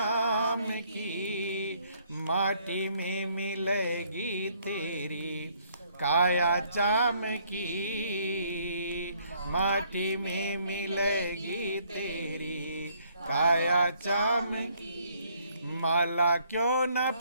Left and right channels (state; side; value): inverted; both; correlation -0.65